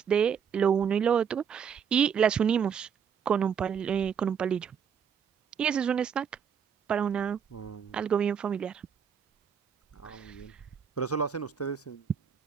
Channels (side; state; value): left; quieter; 7.4 dB